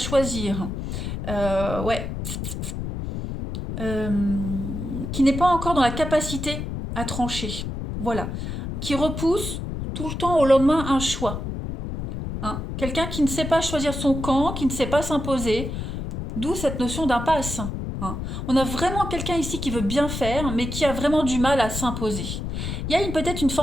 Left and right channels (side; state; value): left; noise; rumble, 5 dB below the sound